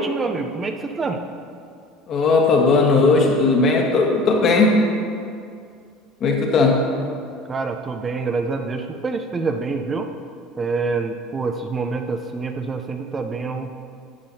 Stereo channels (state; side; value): normal; both; correlation 0.45